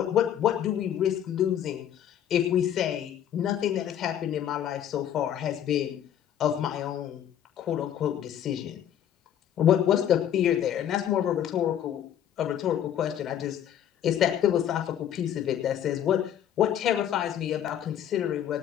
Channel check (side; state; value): right; quieter; 10.2 dB